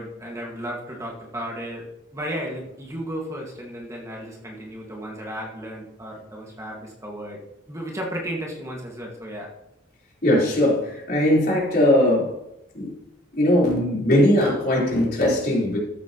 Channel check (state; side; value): normal; both; correlation 0.55